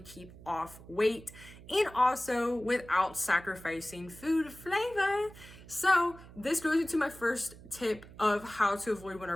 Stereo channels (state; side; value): noise; right; hum, 18 dB below the sound